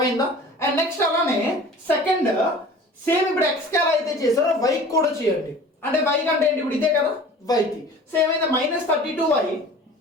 and next అలానే second same ఇప్పుడు x కి ఎలా అయితే చేశారో y కూడా చేయండి అంటే y కంటే ఏంటి ఇప్పుడు ఇదే కదా y కి సేమ్ అయితే -32y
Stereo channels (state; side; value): normal; both; correlation 0.43